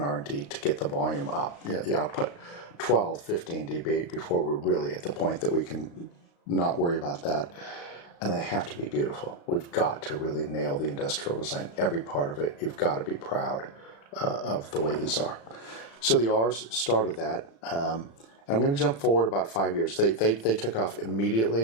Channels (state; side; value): late; right; 35 ms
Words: to get the volume up, the output. 12, 15 dB before we're really at the point that we can not worry about that. And they have to be beautiful. We've got to really nail the industrial design. Every part of it, you've got to be proud of the way these are. So the R's started that. And I'm going to jump forward about 5 years. They took off